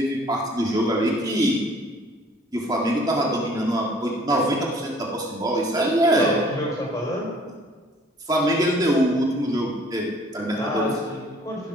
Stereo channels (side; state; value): both; normal; correlation 0.55